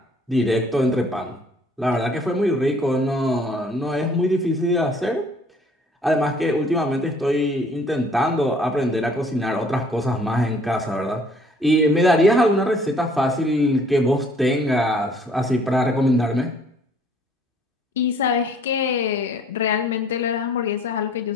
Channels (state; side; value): normal; both; correlation 0.58